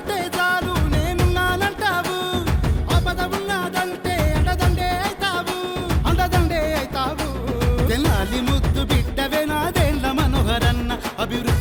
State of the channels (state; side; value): identical; both; correlation 1.00